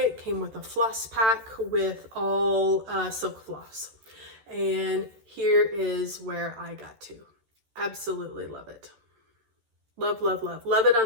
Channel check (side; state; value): left; late; 13 ms